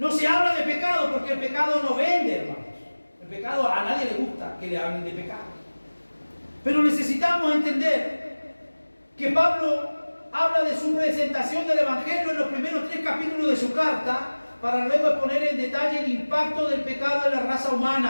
se habla de pecado porque el pecado no vende, hermanos. El pecado a nadie le gusta que le hablen de pecado. Pero necesitamos entender que Pablo habla de su presentación del Evangelio en los primeros 3 capítulos de su carta, para luego exponer en detalle el impacto del pecado en la raza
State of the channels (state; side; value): inverted; both; correlation -1.00